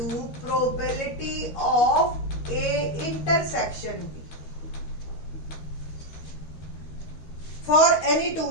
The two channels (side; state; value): right; late; 13 ms